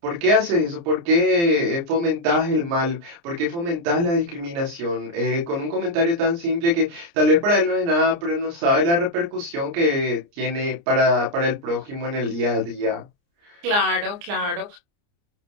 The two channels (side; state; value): left; late; 29 ms